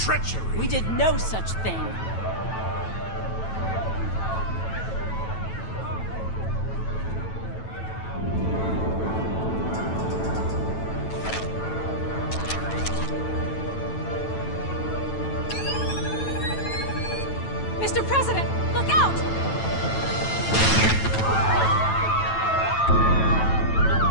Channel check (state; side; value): late; right; 9.1 ms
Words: We did no such thing. Mr. President, look out!